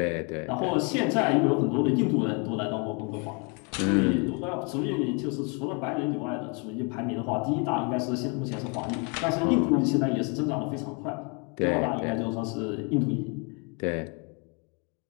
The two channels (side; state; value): right; quieter; 34.6 dB